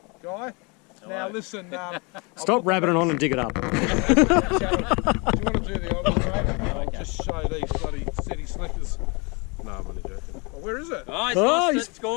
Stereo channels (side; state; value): right; quieter; 30.3 dB